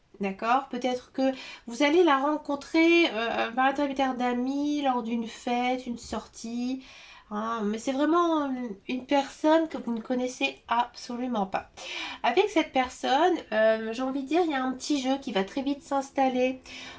D'accord? Peut-être que vous allez la rencontrer par l'intermédiaire d'amis lors d'une fête, une sortie. Hein, mais c'est vraiment une personne que vous ne connaissez absolument pas. Avec cette personne, j'ai envie de dire, il y a un petit jeu qui va très vite s'installer.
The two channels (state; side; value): identical; both; correlation 1.00